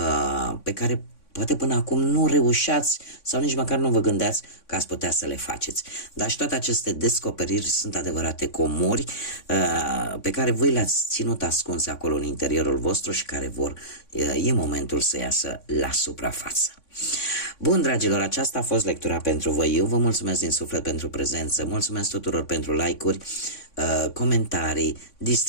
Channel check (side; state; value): right; late; 3.6 ms